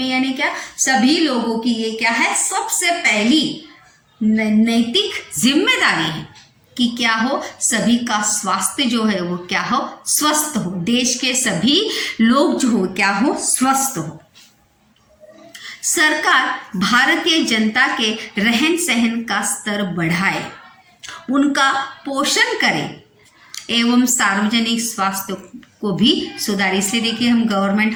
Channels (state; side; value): identical; both; correlation 1.00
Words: यानी क्या, सभी लोगों की ये क्या है, सबसे पहली नैतिक जिम्मेदारी है कि क्या हो, सभी का स्वास्थ्य जो है वो क्या हो, स्वस्थ हो, देश के सभी लोग जो हो क्या हो, स्वस्थ हो। सरकार भारतीय जनता के रहन सहन का स्तर बढ़ाए, उनका पोषण करे एवं सार्वजनिक स्वास्थ्य को भी सुधारे। इसलिए देखिए हम